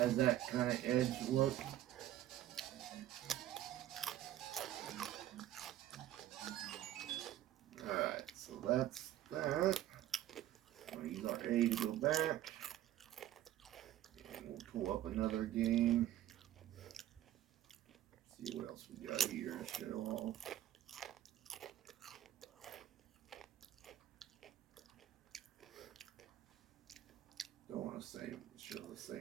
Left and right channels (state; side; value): quieter; left; 13.0 dB